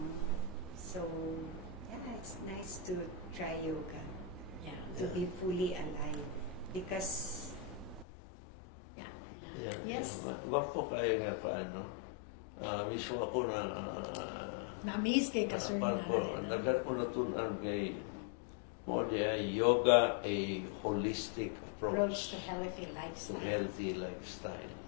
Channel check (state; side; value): drops out; right; at 8.1 s